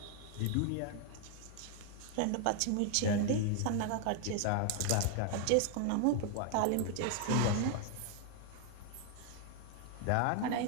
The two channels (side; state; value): both; different; correlation 0.01